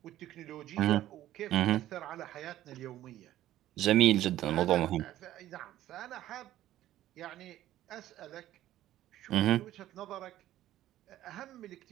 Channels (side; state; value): left; quieter; 13.6 dB